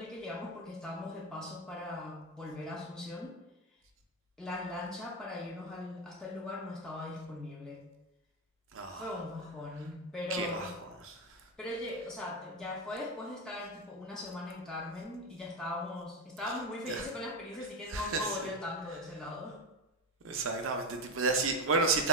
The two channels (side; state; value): both; normal; correlation 0.12